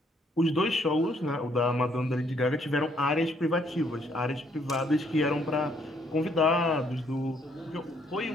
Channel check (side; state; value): both; normal; correlation 0.68